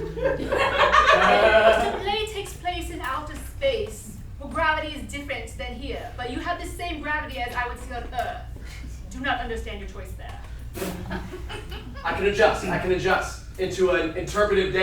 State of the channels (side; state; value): both; identical; correlation 1.00